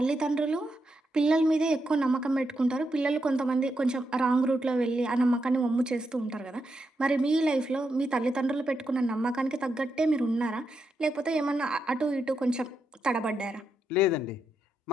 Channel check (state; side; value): normal; both; correlation 0.84